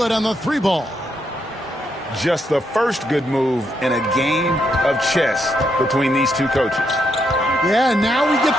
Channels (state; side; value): normal; both; correlation 0.78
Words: on the 3 ball. Just the first good move in a game of chess between these two coaches. Yeah, now we get